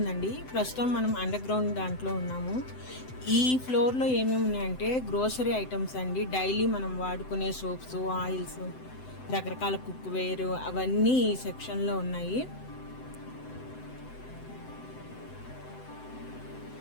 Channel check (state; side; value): late; right; 7.9 ms